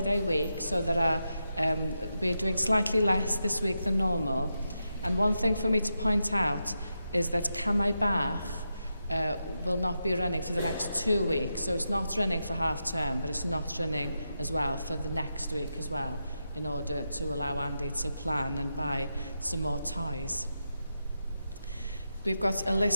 week, so we're doing slightly less this week than normal. And one thing for me to point out is that Camai Bach will not be running for the next 2 weeks. So it's not running for half term, but it's not running as well for the next week as well, in order to allow Andy to plan and buy some more ties. We've got a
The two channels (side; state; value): both; inverted; correlation -0.87